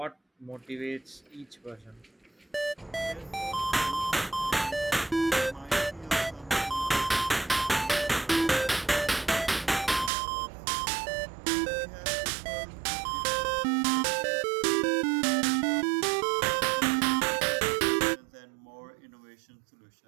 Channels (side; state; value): left; drops out; at 10.1 s